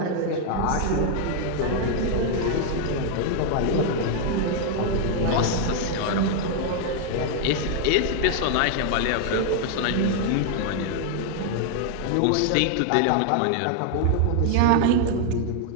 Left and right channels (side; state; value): both; different; correlation 0.00